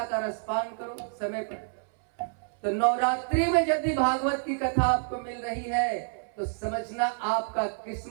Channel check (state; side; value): silent; left; 59 dB below the other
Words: का रसपान करो, समय पर। तो नवरात्रि में यदि भागवत की कथा आपको मिल रही है तो समझना आपका